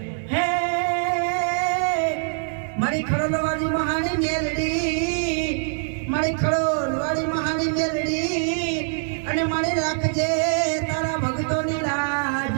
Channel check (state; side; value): silent; left; 58 dB below the other